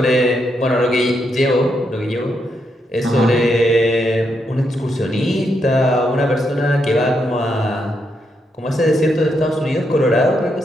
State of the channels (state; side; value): normal; both; correlation 0.80